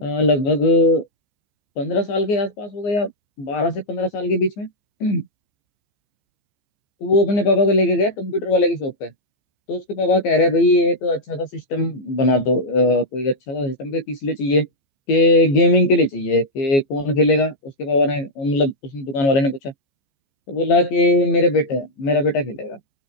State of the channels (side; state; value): right; late; 14 ms